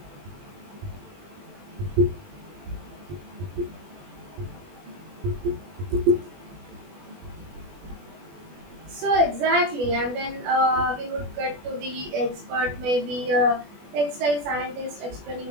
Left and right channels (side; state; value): left; late; 20 ms